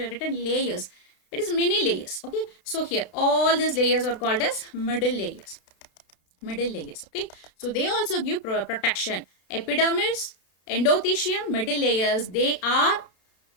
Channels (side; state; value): right; late; 32 ms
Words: layers. It is many layers. Okay. So here all these layers are called as middle layers. Middle layers. Okay. So they also give protection. Epidermis, endothecium, middle layers.